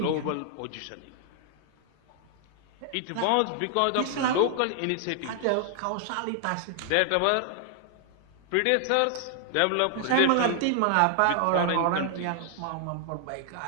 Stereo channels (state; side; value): different; both; correlation 0.00